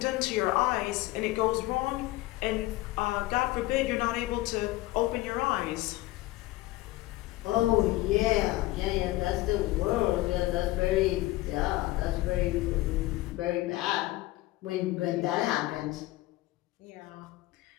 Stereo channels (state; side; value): quieter; right; 18.4 dB